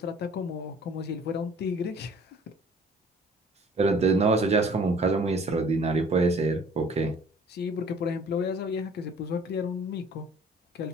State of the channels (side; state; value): both; normal; correlation 0.53